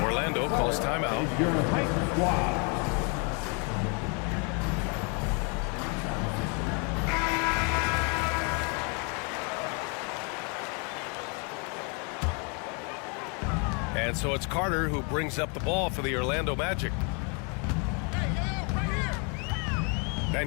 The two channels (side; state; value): right; quieter; 35.2 dB